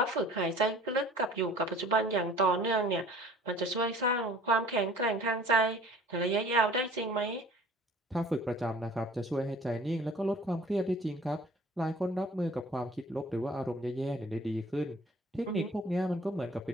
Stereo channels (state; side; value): normal; both; correlation 0.49